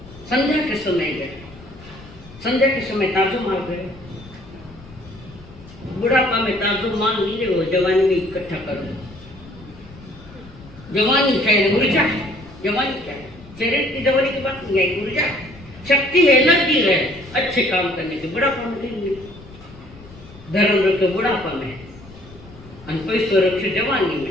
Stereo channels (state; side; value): noise; left; rumble, 20 dB below the sound